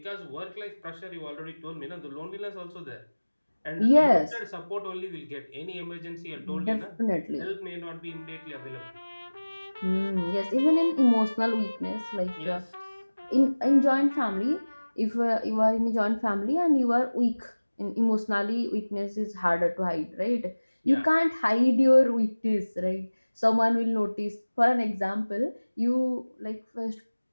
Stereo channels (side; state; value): both; inverted; correlation -1.00